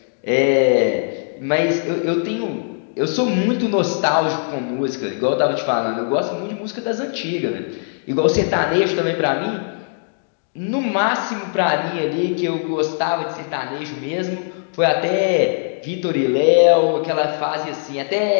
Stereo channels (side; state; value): right; silent; digital silence